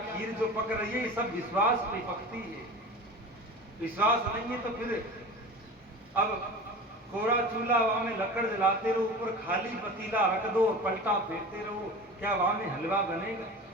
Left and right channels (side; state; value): both; normal; correlation 0.34